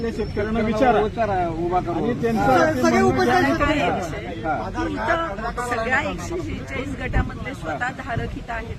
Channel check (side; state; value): both; identical; correlation 1.00